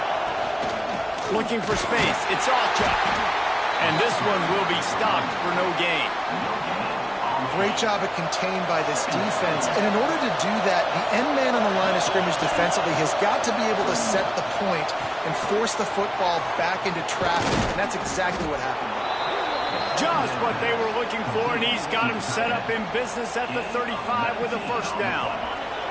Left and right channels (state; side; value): identical; both; correlation 1.00